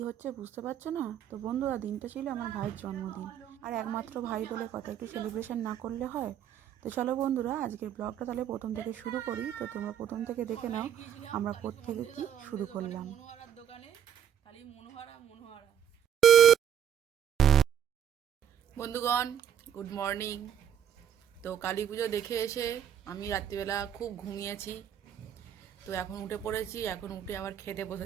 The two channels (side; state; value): left; quieter; 9.3 dB